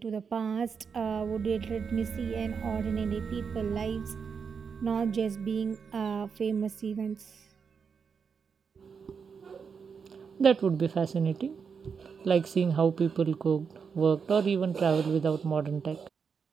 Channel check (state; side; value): quieter; left; 6.1 dB